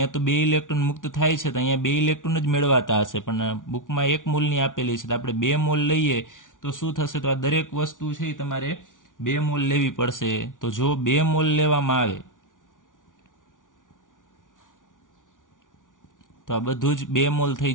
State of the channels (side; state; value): right; late; 0.88 ms